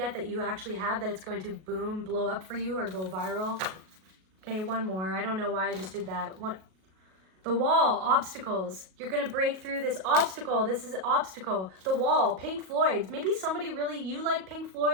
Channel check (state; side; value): late; left; 37 ms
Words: that you actually have, that it's going to boom, blow up for you or go viral. Okay, one more. I don't know why I just did that. The wall, obstacles. You're going to break through this obstacle. This is an obstacle. The wall, Pink Floyd. Maybe somebody really, you like Pink